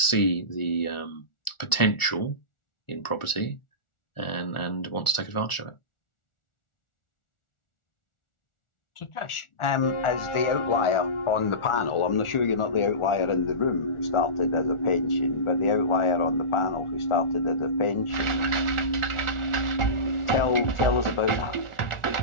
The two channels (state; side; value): late; right; 1.4 ms